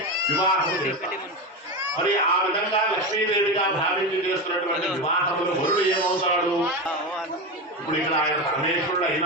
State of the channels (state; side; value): normal; both; correlation 0.19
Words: వివాహం చేస్తాం. మరి ఆ విధంగా లక్ష్మీదేవిగా భావించి చేస్తున్నటువంటి వివాహంలో వరుడు ఏమవుతాడు? ఇప్పుడు ఇక్కడ ఆయన పరమేశ్వరుడు